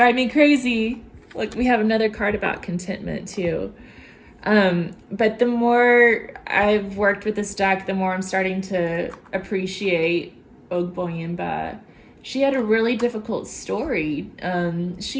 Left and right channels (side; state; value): both; identical; correlation 1.00